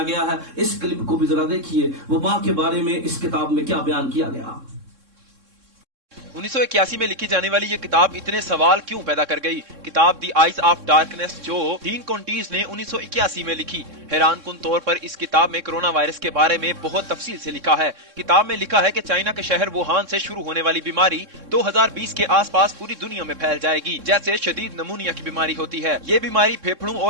گیا ہے. اس کلپ کو بھی ذرا دیکھیے وبا کے بارے میں اس کتاب میں کیا بیان کیا گیا. 1981 میں لکھی جانے والی یہ کتاب اتنے سوال کیوں پیدا کر گئی؟ کتاب دی آئیز آف ڈارکنیس جو ڈین کونٹیز نے 1981 میں لکھی. حیران کن طور پر اس کتاب میں کرونا وائرس کے بارے میں بہت تفصیل سے لکھا ہے. کتاب میں لکھا ہے کہ چائنا کے شہر ووہان سے شروع ہونے والی بیماری 2020 کے آس پاس پوری دنیا میں پھیل جائے گی, جیسے شدید نمونیا کی بیماری ہوتی ہے. یہ بیماری پھیپھڑوں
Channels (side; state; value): left; late; 3.6 ms